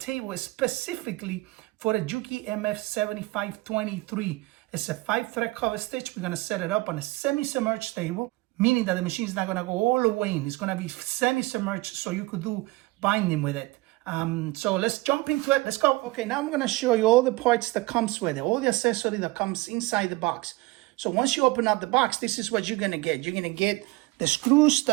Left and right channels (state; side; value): quieter; left; 21.5 dB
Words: specifically for the Juki MF-7523. It's a 5-thread cover stitch. We're going to set it up on a semi-submerged table, meaning that the machine is not going to go all the way in. It's going to be semi-submerged so you could do binding with it. So let's jump into it. Let's go. Okay, now I'm going to show you all the parts that comes with it, all the accessory that comes inside the box. So once you open up the box, this is what you're going to get. You're going to get the screws